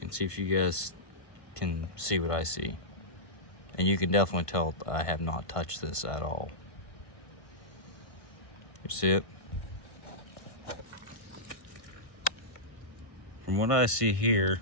see if you guys can see what I see. And you can definitely tell I have not touched this at all. You see it? From what I see here,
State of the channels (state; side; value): late; right; 1.5 ms